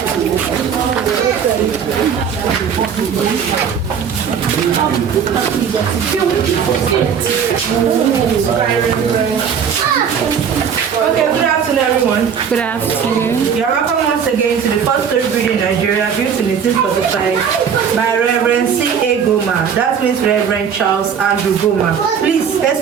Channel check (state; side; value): quieter; left; 7.3 dB